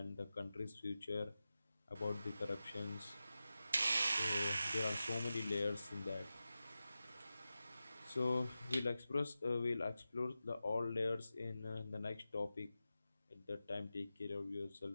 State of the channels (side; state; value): both; inverted; correlation -0.93